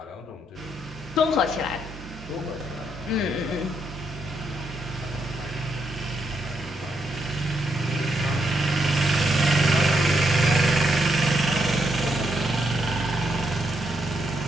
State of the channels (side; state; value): both; normal; correlation 0.78